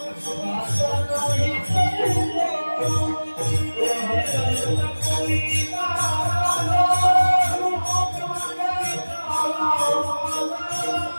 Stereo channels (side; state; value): both; inverted; correlation -1.00